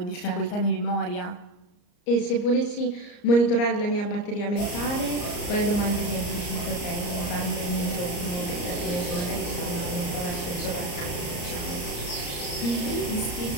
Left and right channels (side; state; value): right; late; 34 ms